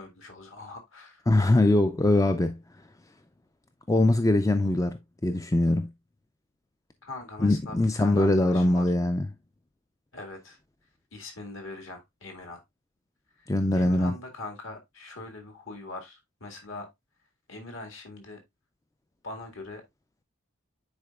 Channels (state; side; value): normal; both; correlation 0.88